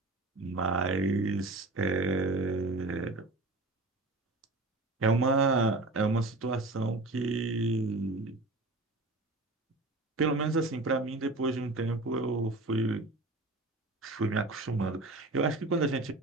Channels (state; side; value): quieter; left; 3.0 dB